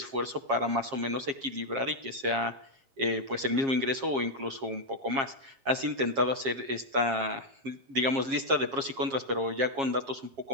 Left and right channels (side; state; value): left; late; 7.4 ms